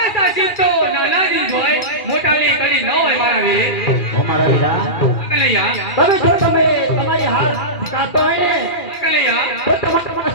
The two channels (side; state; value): right; late; 2.3 ms